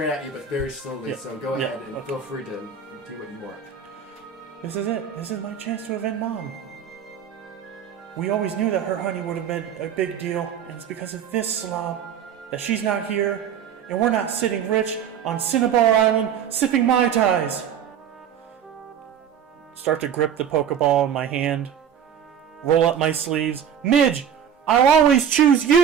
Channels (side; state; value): left; quieter; 8.3 dB